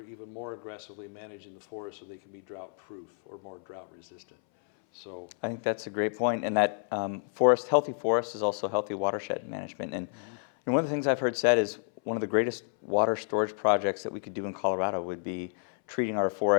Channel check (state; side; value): silent; right; 58 dB below the other